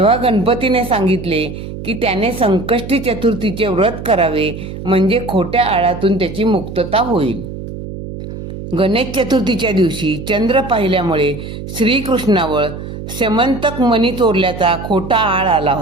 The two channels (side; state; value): right; noise; hum, 9 dB below the sound